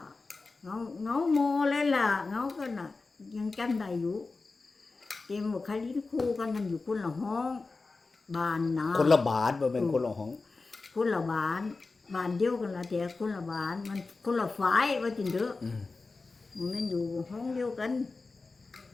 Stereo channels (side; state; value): right; quieter; 3.9 dB